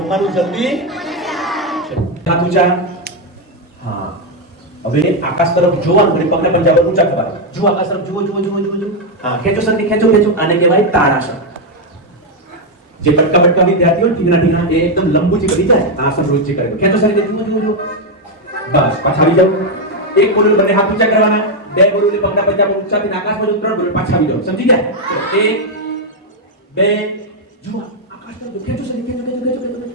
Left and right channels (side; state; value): both; normal; correlation 0.03